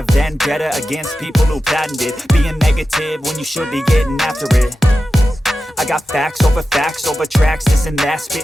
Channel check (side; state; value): both; normal; correlation 0.93